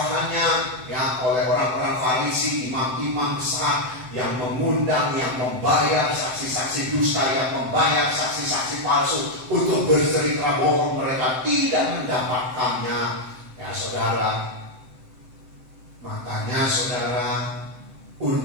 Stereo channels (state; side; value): late; left; 7.8 ms